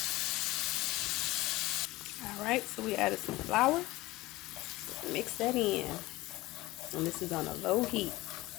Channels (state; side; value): quieter; right; 19.3 dB